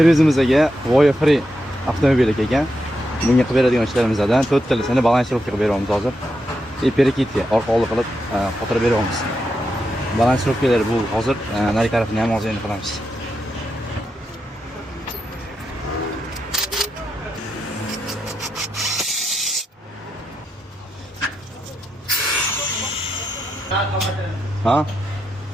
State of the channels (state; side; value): normal; both; correlation 0.85